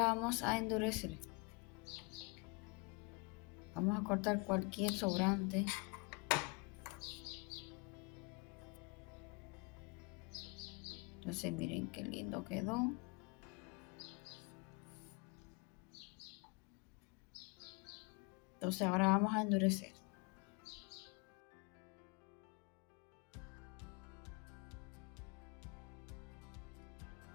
vamos a endurecer. Vamos a cortar cualquier sobrante. Entonces miren qué lindo quedó. Entonces ahora vamos a endurecer.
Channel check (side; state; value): right; quieter; 28.1 dB